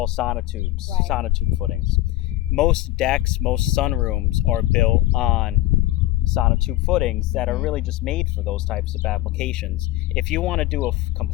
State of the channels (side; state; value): right; quieter; 16.1 dB